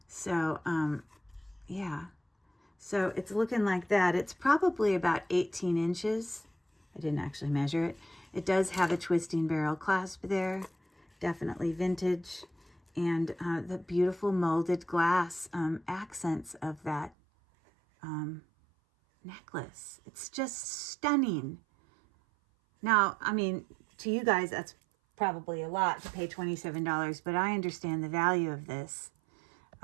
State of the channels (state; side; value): drops out; left; at 17.1 s